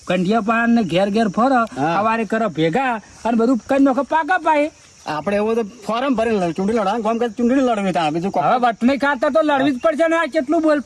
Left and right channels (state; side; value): identical; both; correlation 1.00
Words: કંઢિયા પાન ને ઘેર ઘેર ફરો હા. સવારે કરો ભેગા અને બધું કઈ નોખો પાકા પાય આપણે એવું તો ફોરમ ભરીને ચૂંટણી લડવાનું કામ કરે ચૂંટણી લડવી ત્યાં બીજું હવે વટણી ખાતા તો લડવી જ પડશે ને આ કેટલું